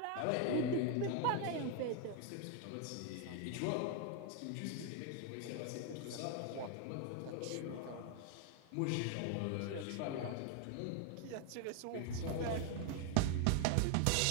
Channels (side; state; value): both; different; correlation 0.01